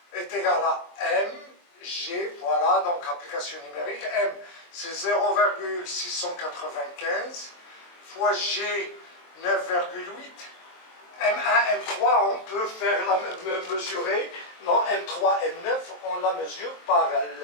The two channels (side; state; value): right; late; 23 ms